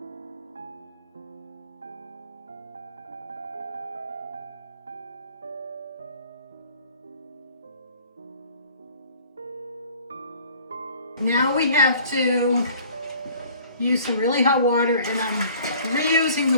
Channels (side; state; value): both; inverted; correlation -0.51